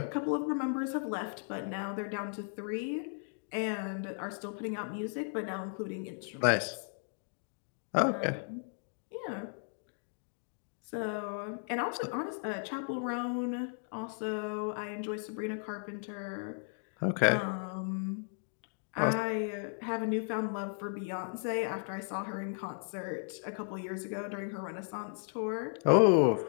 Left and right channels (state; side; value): silent; right; 54 dB below the other